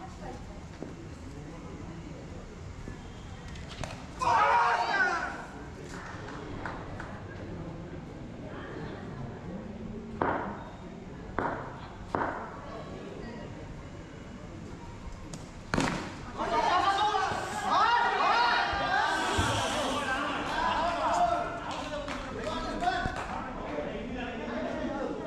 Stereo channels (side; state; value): both; identical; correlation 1.00